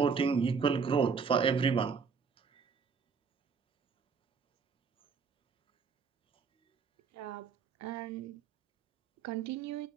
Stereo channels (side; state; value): left; quieter; 5.6 dB